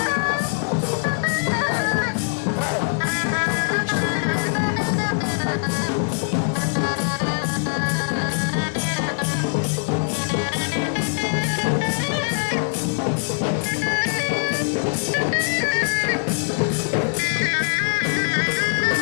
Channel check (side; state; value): right; silent; digital silence